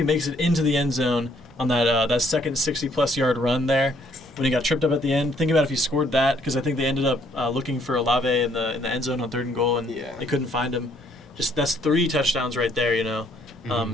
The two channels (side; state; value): right; noise; rumble, 28 dB below the sound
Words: makes it into the end zone on that second 60-plus yard run there, when he got tripped up at the end, think about if he scored that, because I think they ended up looking for Olave in the end zone on 3rd and goal, and they couldn't find him. Just that's 3 touchdowns right there,